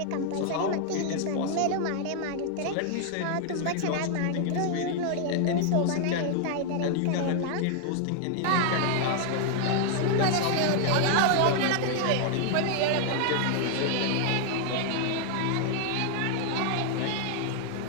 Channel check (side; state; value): both; different; correlation 0.00